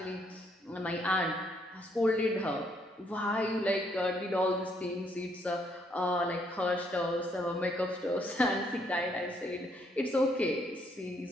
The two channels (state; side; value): normal; both; correlation 0.71